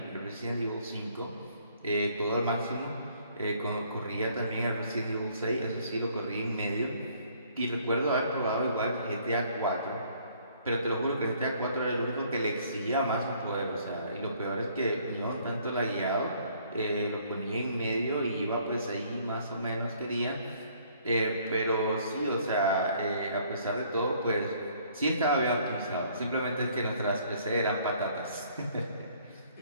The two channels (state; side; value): inverted; both; correlation -0.62